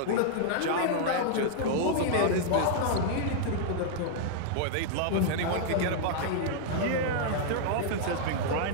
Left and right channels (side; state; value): both; different; correlation -0.01